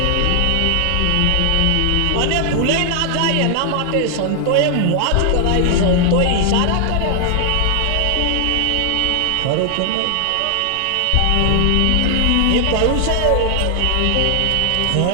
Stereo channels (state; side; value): different; both; correlation 0.00